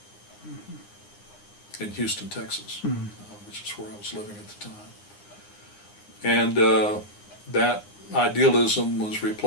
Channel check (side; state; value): right; late; 9.8 ms